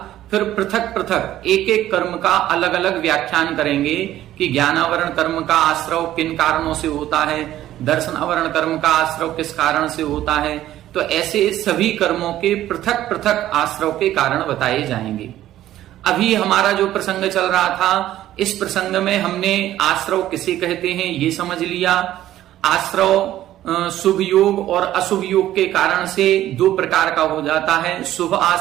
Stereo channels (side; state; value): left; quieter; 13.3 dB